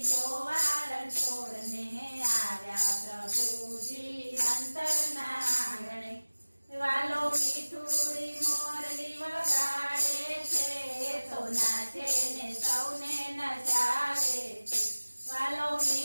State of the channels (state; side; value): inverted; both; correlation -1.00